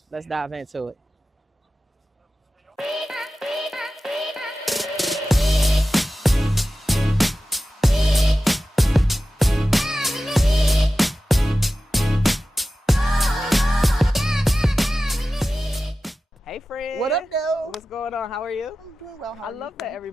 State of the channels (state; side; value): normal; both; correlation 0.94